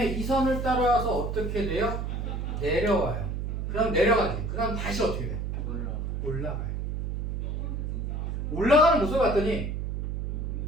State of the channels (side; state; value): right; noise; hum, 3 dB below the sound